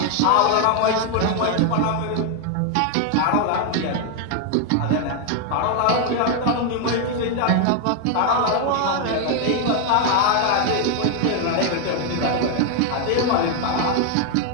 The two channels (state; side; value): different; both; correlation 0.01